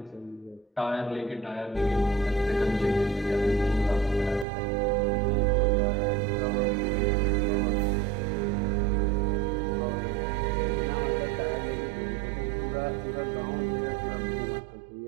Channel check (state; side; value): drops out; left; at 4.5 s